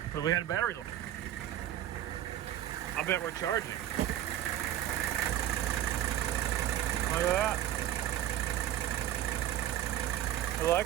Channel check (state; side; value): quieter; left; 12.0 dB